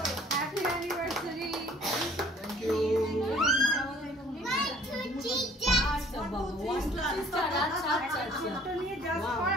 Happy anniversary. Thank you. আচ্ছা বাবা, 1 2 3 star. আচ্ছা আচ্ছা আচ্ছা, ছোটটা নিয়ে জাস্ট কর,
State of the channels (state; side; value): normal; both; correlation 0.55